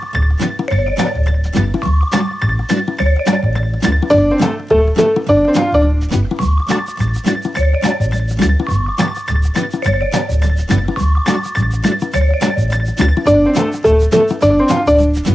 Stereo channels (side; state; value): both; normal; correlation 0.93